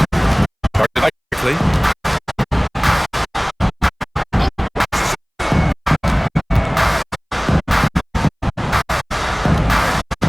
Guarded by quickly.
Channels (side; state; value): both; identical; correlation 1.00